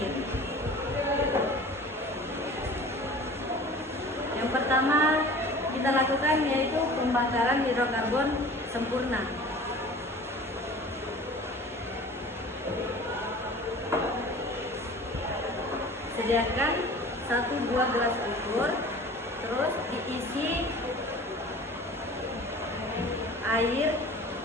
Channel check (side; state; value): both; normal; correlation 0.42